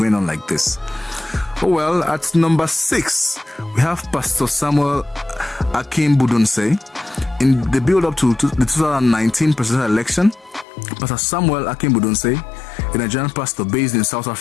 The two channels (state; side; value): drops out; right; at 10.7 s